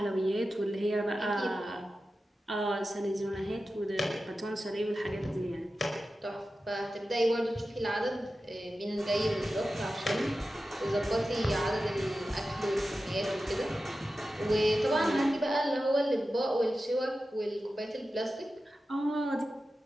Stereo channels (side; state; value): both; normal; correlation 0.93